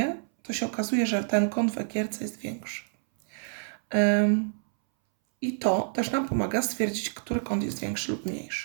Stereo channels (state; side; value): silent; left; 59 dB below the other